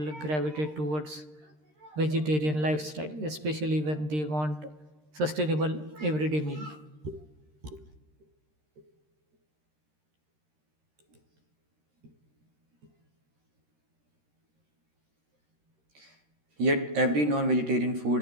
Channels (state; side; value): late; left; 13 ms